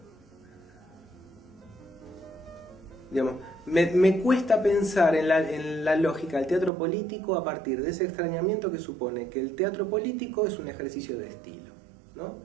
digamos, me cuesta pensar en la lógica del teatro político a partir de ese extrañamiento que supone que el teatro político es un ejercicio de estilo, ¿no?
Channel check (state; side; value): drops out; left; at 6.7 s